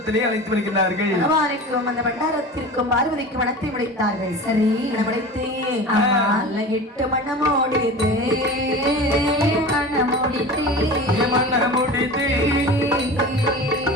அழைத்து வருகிறார்கள். அந்த பண்டாரத்திற்கும் பார்வதிக்கும் மனத்தை முடித்தார்கள். சரி, முடித்து 8 மணமோடித்து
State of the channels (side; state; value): both; normal; correlation 0.34